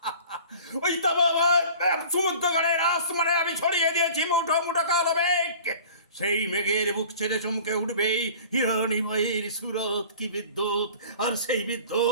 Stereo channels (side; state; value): both; inverted; correlation -0.44